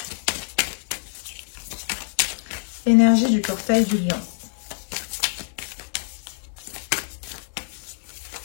Énergie du portail du lion.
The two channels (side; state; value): right; silent; 62 dB below the other